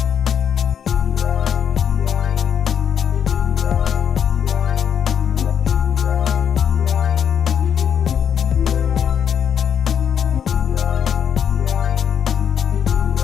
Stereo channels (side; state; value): right; quieter; 8.2 dB